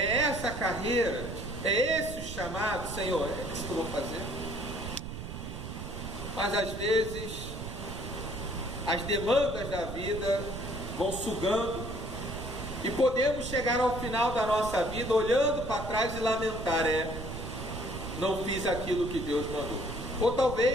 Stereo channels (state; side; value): noise; right; rumble, 8 dB below the sound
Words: essa carreira, é esse o chamado, Senhor, é isso que eu vou fazer. Mas às vezes as demandas da vida vão sugando e podemos chegar ao final da nossa vida olhando para trás e lamentar, não fiz aquilo que Deus mandou. Ou